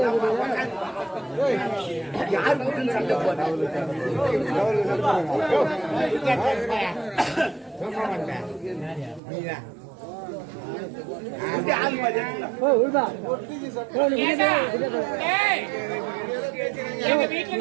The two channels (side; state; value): left; drops out; at 9.2 s